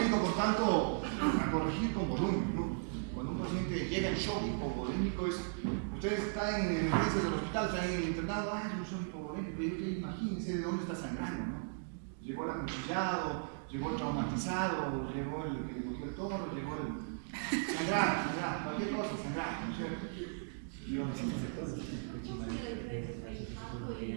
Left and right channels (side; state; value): left; silent; digital silence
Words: por tanto, a corregir con volumen, ¿no? Cuando un paciente llega en shock hipovolémico, ustedes están en emergencias del hospital, están en el internado, es un shock hipovolémico, y imagínense de dónde está sangrando, ¿no? Llegó el acuchillado, llegó el traumatizado, llegó el que le cogió el toro, llegó el... Sangrar, cualquier cosa, sangrar, ¿no es cierto?